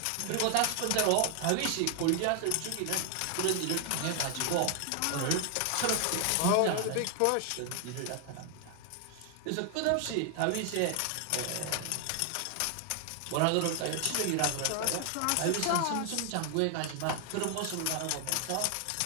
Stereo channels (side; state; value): both; different; correlation 0.00